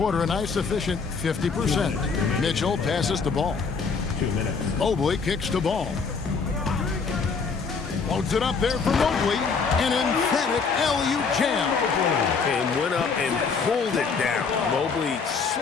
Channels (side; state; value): right; quieter; 5.2 dB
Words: a nice efficient 50%. Mitchell passes the ball. 2 minutes. Mobley kicks the ball. Loads it up there for Mobley. An emphatic LU jam. And went up and pulled it down. Mobley